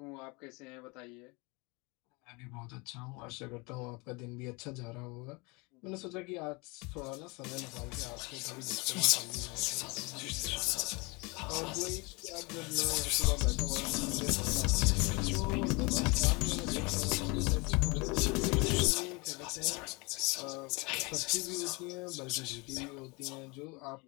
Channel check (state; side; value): quieter; right; 27.7 dB